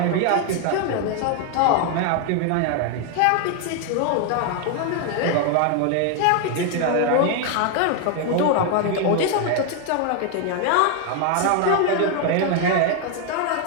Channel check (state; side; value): different; both; correlation 0.00